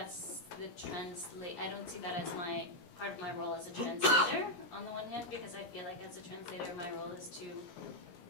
the I don't see that as part of my role as a translator, on the one hand, because I feel like as a translator, my role is to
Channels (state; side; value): late; right; 17 ms